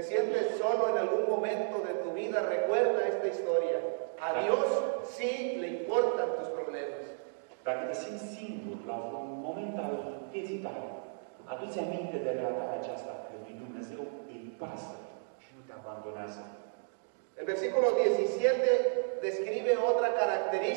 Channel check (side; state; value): left; silent; digital silence